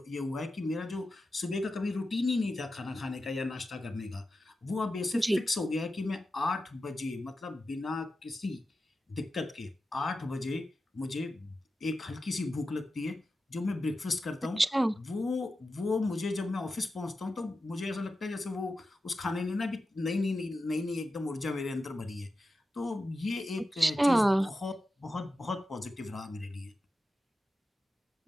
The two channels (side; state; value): both; normal; correlation 0.91